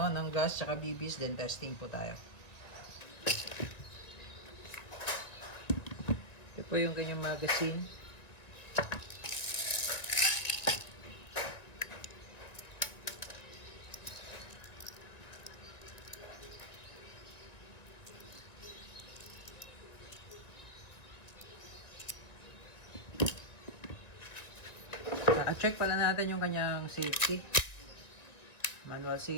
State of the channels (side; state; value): right; late; 2.0 ms